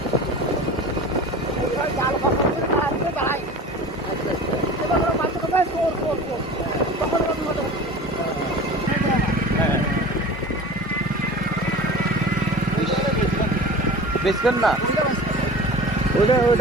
এবার জাল ফসল করে দাঁড়াচ্ছে দাঁড়াই। আচ্ছা আচ্ছা এবার ওরা মাঝে কোথায় সোর। তখন ওরা বিপদে পড়ে। হ্যাঁ বেচবেন না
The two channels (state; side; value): normal; both; correlation 0.38